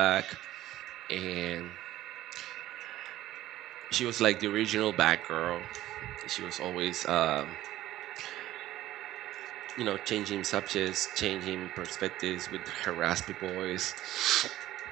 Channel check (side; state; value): left; quieter; 14.6 dB